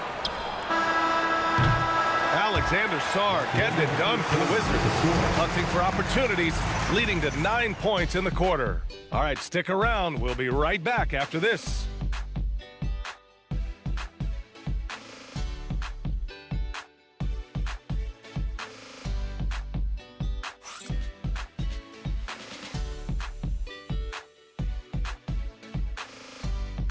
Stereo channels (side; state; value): both; identical; correlation 1.00